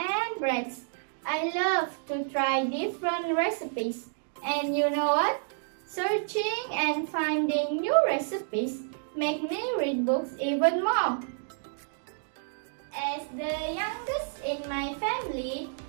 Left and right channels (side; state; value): left; silent; digital silence